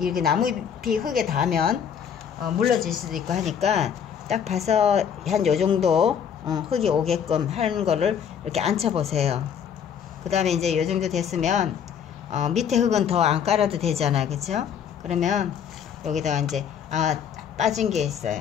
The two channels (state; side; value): quieter; right; 8.0 dB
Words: 나무잎이 흙에 닿으면 물러질 수도 있고 하니까, 딱 봐서 한 요 정도 흙이 오게끔 하는 거를 이렇게 앉혀 보세요. 그 다음에 이제 요 정도 됐으면 밑에 흙은 더 안 깔아도 되잖아요, 그쵸? 그러면 여기다가 이제 빠진 게